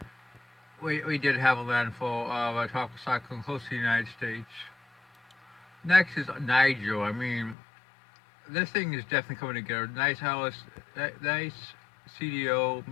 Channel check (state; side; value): drops out; right; at 7.6 s